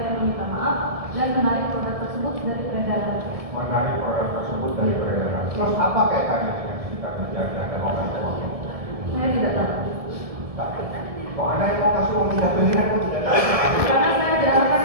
meminta maaf dan menarik produk tersebut dari peredaran. Menarik produk tersebut dari peredaran. Terus apa kaitannya dengan kita menjaga dan mengatur uang? Saya tidak tahu. Kok Anda yang mau kasih uang 3 miliar kok tidak tahu? Karena saya diarahkan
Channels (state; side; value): late; left; 1.7 ms